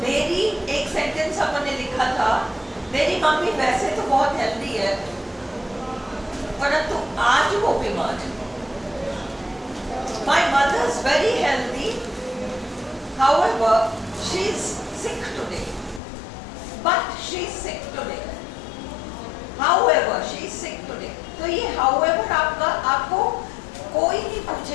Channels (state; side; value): drops out; right; at 16.0 s